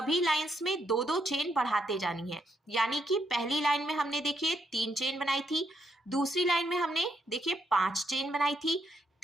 लाइंस में 2-2 चेन बढ़ाते जानी है। यानी कि पहली लाइन में हमने देखिए 3 चेन बनाई थी, दूसरी लाइन में हमने देखिए 5 चेन बनाई थी,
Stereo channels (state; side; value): normal; both; correlation 0.77